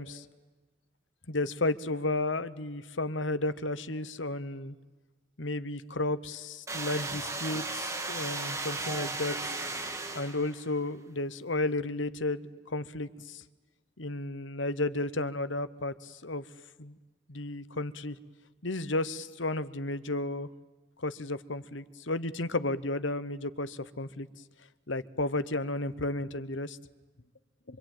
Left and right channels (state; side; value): normal; both; correlation -0.06